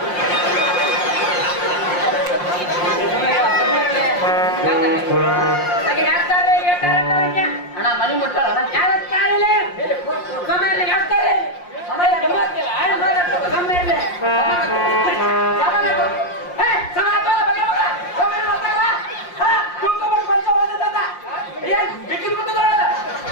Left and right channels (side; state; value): right; late; 5.6 ms